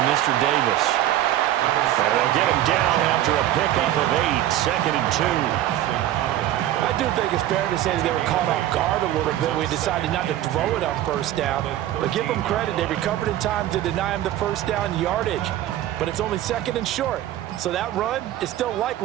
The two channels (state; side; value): quieter; left; 13.1 dB